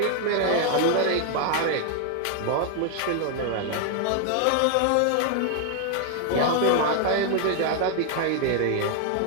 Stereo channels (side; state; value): both; different; correlation 0.00